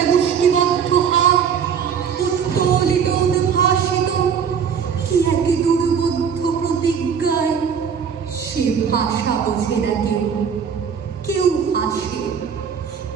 মুষ্টিবদ্ধ হাত উত্তোলিত উদ্ভাসিত কি এক দুর্বোধ্য প্রতিজ্ঞায়। সে ভাষা বোঝে না কেউ, কেউ হাসে,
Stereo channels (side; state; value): left; quieter; 7.1 dB